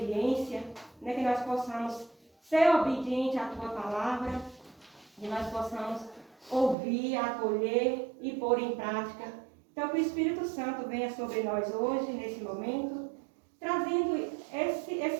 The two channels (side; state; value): left; drops out; at 6.8 s